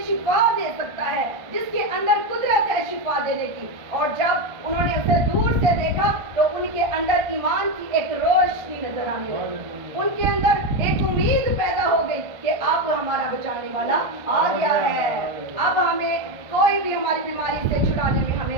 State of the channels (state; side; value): late; left; 1.3 ms